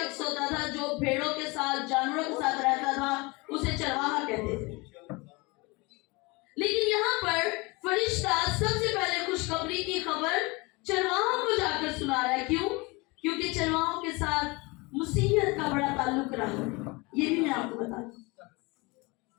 होता था, जो भेड़ों के साथ जानवरों के साथ रहता था, उसे चरवाहा कहते थे। लेकिन यहाँ पर फरिश्ता सबसे पहले खुशखबरी की खबर चरवाहों को जाकर सुना रहा है। क्यों? क्योंकि चरवाहों के साथ मुसीहत का बड़ा ताल्लुक रहा है। ये भी मैं आपको बता दूं,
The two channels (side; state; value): right; quieter; 25.7 dB